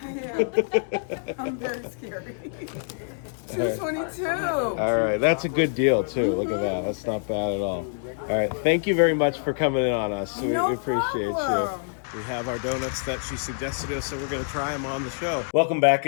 am. I'm very scary. 222. All right, that's a good deal too. Look at that. That's not bad at all. All right, thank you very much for coming in on us. We No appreciate problem. you. We have our donuts that she suggested to us, so we're going to try them on the show. Welcome back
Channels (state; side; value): silent; right; digital silence